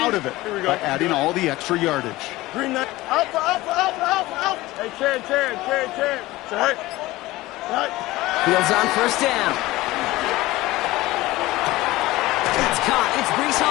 out of it by adding all the extra yardage. Green knight. Alpha, alpha, alpha, alpha, alpha. Hey, Ken. Sit high. Sit high. Fields on first down. It's caught. It's Breece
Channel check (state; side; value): quieter; right; 18.6 dB